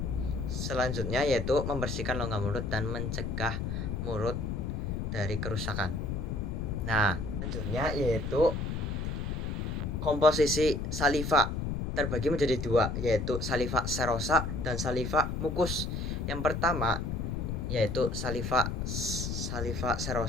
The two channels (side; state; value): left; noise; rumble, 2 dB below the sound